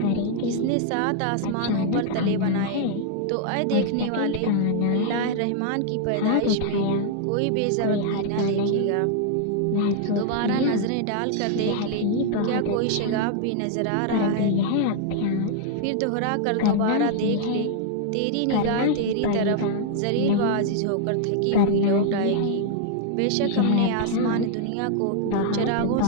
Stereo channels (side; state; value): both; different; correlation 0.00